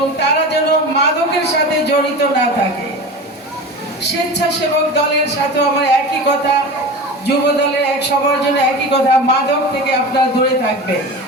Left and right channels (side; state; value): both; normal; correlation 0.31